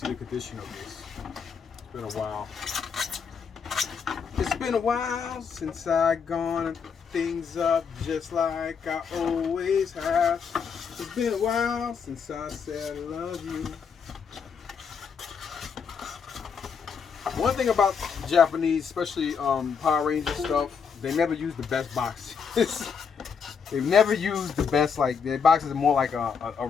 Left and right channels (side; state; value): right; quieter; 6.3 dB